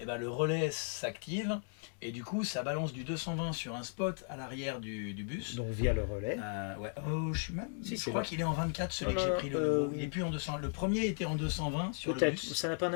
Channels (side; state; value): right; silent; 54 dB below the other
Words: ben, le relais s'active et du coup ça balance du 220 sur un spot à l'arrière du bus. Donc via le relais. Ouais. Oh, je Si, je c'est crois vrai. qu'il est en 24 celui que j'ai pris le nouveau. Il est plus en 200. Le premier était en 220 sur le Peut-être. bus. Ça n'a pas